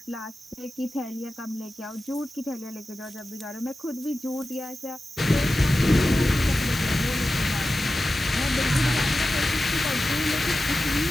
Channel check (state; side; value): normal; both; correlation 0.94